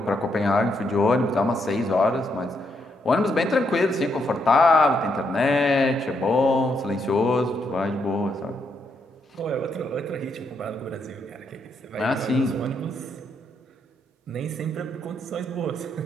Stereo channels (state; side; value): normal; both; correlation 0.78